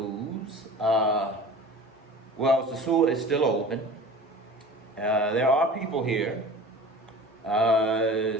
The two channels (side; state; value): both; normal; correlation 0.39